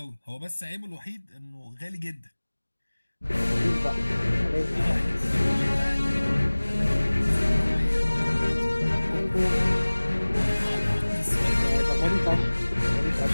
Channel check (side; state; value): both; inverted; correlation -1.00